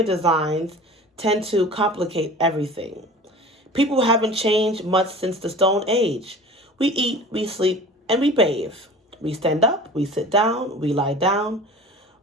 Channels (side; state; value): both; normal; correlation 0.40